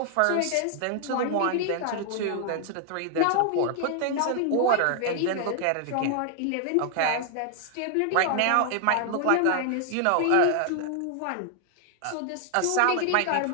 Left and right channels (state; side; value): different; both; correlation 0.00